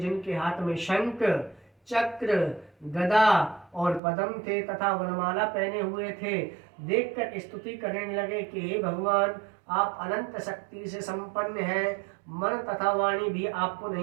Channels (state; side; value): drops out; left; at 4.0 s